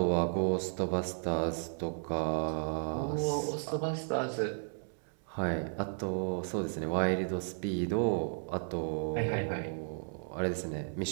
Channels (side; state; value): left; silent; 55 dB below the other